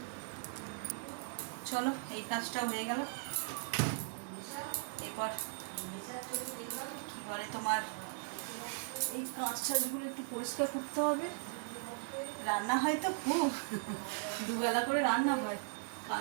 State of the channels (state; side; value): silent; left; 52 dB below the other